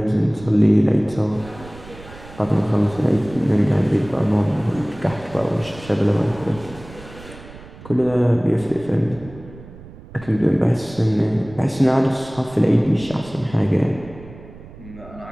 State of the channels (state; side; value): noise; right; rumble, 18 dB below the sound